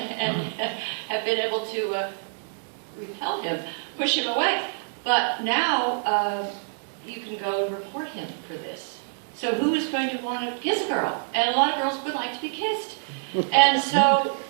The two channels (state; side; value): silent; left; digital silence